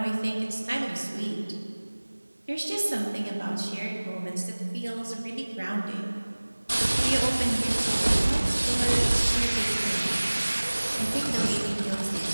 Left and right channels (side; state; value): both; inverted; correlation -1.00